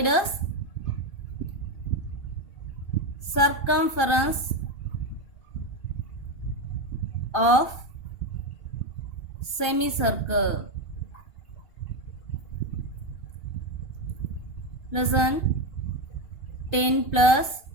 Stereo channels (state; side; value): late; right; 2.8 ms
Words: is circumference of semicircle. Listen, 10 plus